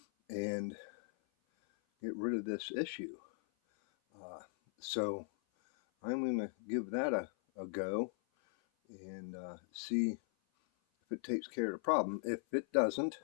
and get rid of this issue. So I'm going to give that a go and see if it takes care of the problem. If it doesn't,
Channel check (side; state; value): right; silent; 52 dB below the other